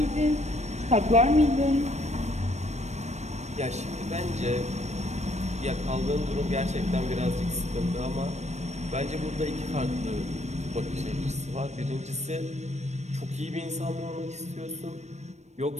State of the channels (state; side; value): late; left; 0.33 ms